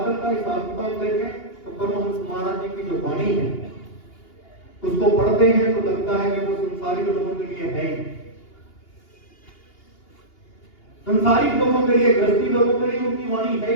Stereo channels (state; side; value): late; right; 2.8 ms